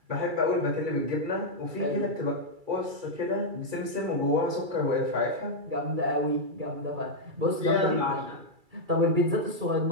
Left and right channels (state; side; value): late; left; 2.3 ms